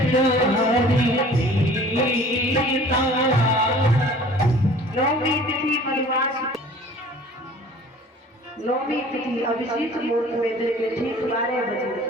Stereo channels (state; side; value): normal; both; correlation 0.48